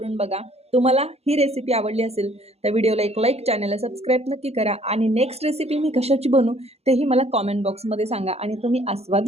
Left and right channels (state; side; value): late; left; 0.30 ms